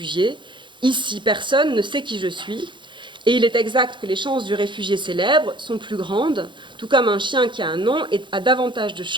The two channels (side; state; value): left; late; 0.23 ms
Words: Ici, personne ne sait qui je suis. Et il est exact que les chances du réfugié célèbre sont plus grandes, tout comme un chien qui a un nom a davantage de